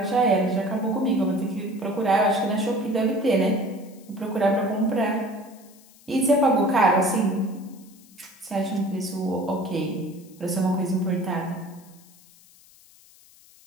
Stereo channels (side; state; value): left; noise; hiss, 26 dB below the sound